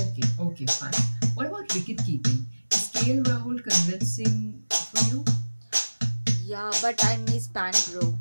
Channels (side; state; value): both; inverted; correlation -1.00